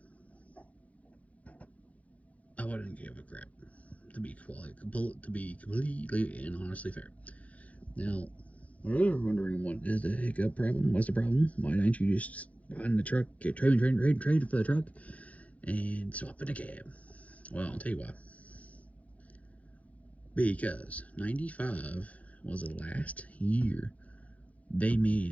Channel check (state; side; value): late; right; 0.067 ms